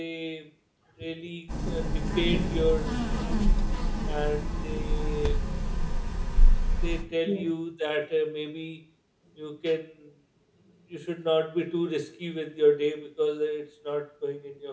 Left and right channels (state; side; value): identical; both; correlation 1.00